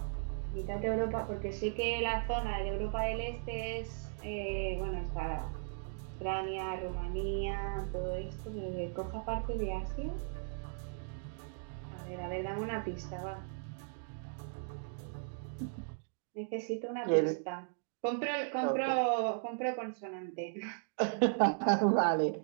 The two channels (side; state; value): left; silent; digital silence